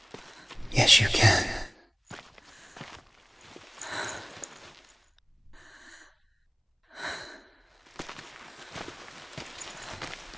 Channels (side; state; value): both; identical; correlation 1.00